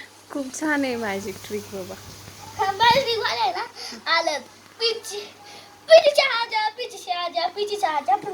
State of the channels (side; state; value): both; identical; correlation 1.00